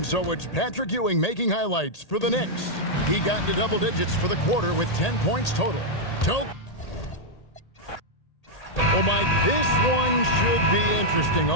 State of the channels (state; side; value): late; right; 1.8 ms